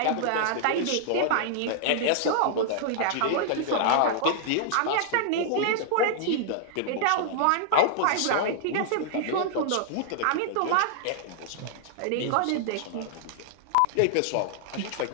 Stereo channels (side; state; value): both; different; correlation -0.01